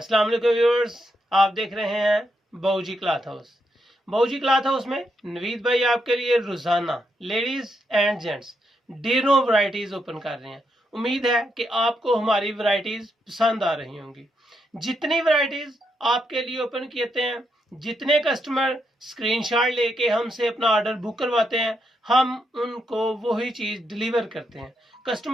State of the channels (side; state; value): both; normal; correlation 0.80